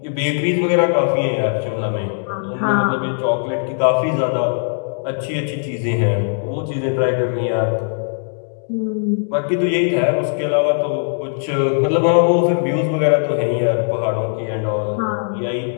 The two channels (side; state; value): right; silent; digital silence